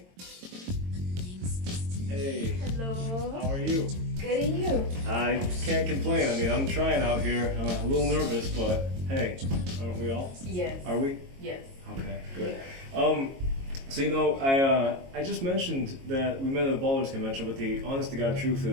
Hey. Hello. How are you? Good, and you? I can't complain. I mean, I'm trying out here. I'm a little nervous, but hey, aren't we all? Yes. Are we? Yes. Okay, good. Yeah. So I just mentioned that we met at a ballers convention, but the honest to God truth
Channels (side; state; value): left; late; 22 ms